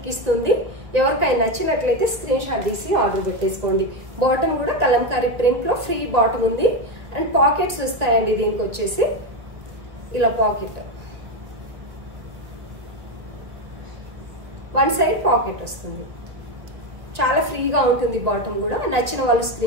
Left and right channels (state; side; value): late; left; 1.6 ms